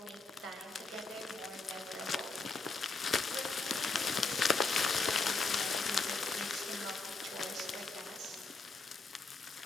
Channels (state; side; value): quieter; right; 3.8 dB